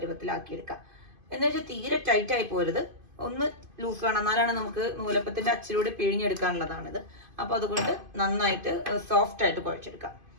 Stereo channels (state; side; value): late; left; 2.5 ms